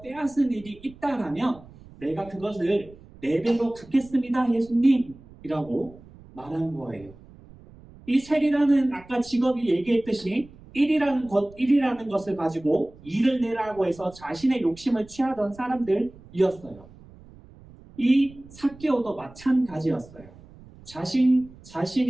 빼앗은 일이 있다라면 내가 그것을 4배로 갚겠습니다 예수님이라고 말한 거예요. 이 셀이라는 아까 직업이 얘기했듯이 1이라는 것을 가지고 일을 내라고 해서 자신의 욕심을 취하던 사람들이었어요. 이 삭개오도 마찬가지였어요.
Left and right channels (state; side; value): noise; right; rumble, 22 dB below the sound